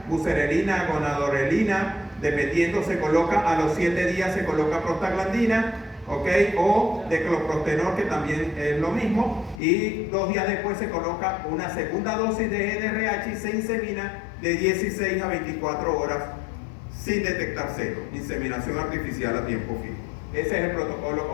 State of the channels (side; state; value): right; drops out; at 9.6 s